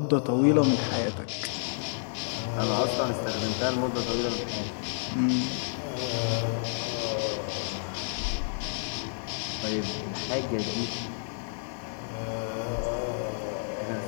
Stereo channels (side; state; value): right; silent; digital silence